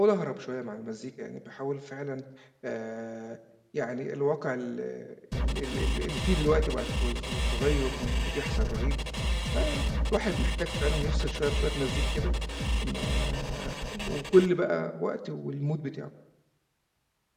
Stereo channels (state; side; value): identical; both; correlation 1.00